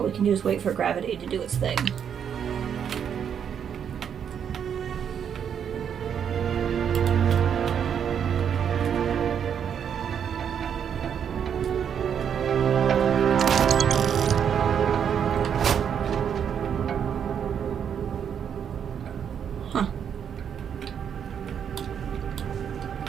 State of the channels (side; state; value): left; quieter; 8.1 dB